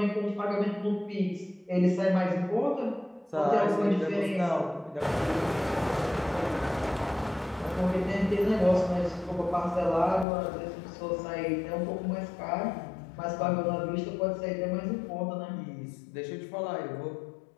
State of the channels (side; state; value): right; drops out; at 10.2 s